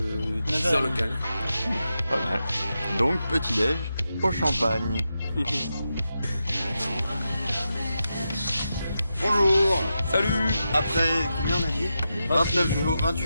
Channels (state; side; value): inverted; both; correlation -0.88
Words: 10 h local. Pas mal. Donc petit déj au champagne. Bonjour. Salut. Après combien on a dit? 29 jours,